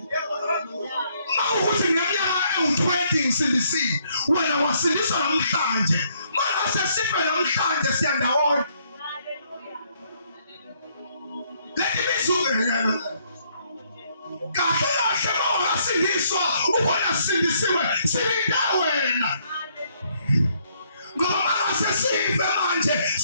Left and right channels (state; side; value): inverted; both; correlation -0.69